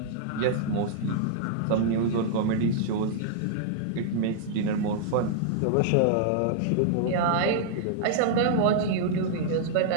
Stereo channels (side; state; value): both; different; correlation -0.01